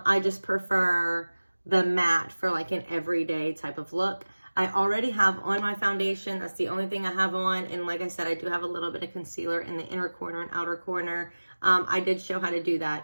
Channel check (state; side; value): inverted; both; correlation -1.00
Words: just prefer the matte for like an everyday type of look. I already have on my foundation. That's the only thing I have on. And like I said, I do have a little bit of concealer in the inner corner and outer corner. I did show how to do